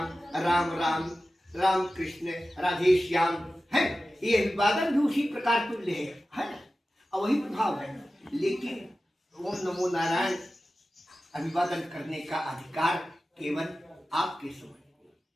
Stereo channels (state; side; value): normal; both; correlation 0.95